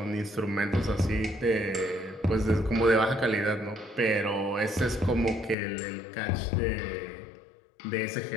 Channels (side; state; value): right; drops out; at 5.6 s